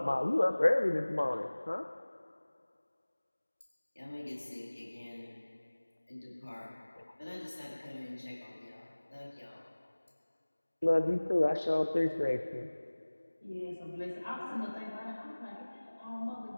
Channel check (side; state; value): both; inverted; correlation -1.00